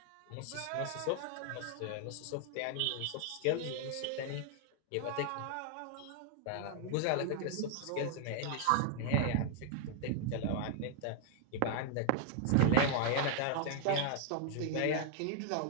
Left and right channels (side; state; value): both; different; correlation 0.00